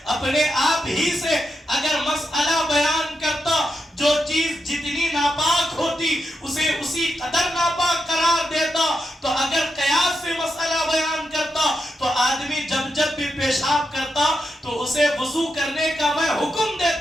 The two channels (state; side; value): normal; both; correlation 0.85